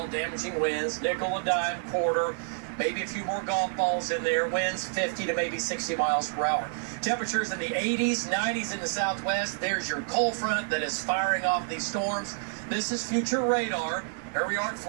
damaging winds, nickel and dime, quarter, maybe a few more golf balls in there, winds 50 to maybe 60 miles per hour. Temperatures in the 80s, 90s in the southwest. There's your cold front that is firing off these storms. This is future radar. Here we are at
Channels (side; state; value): left; silent; 59 dB below the other